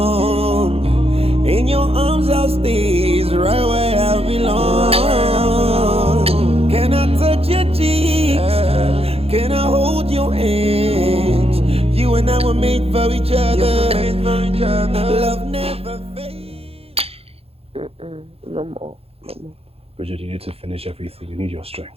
In your arms I'll stay right where I belong. Can I touch your cheeks? Can I hold your hands? You and I were made for each other. Love never fades. No more. Bridget, you need to finish everything. You need your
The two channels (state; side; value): late; left; 0.29 ms